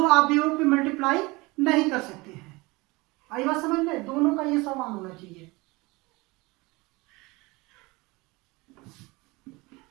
अवयवों पे मल्टीप्लाई नहीं कर सकते हैं। आई बात समझ में, दोनों का ये समान होना चाहिए।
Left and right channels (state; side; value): quieter; left; 23.6 dB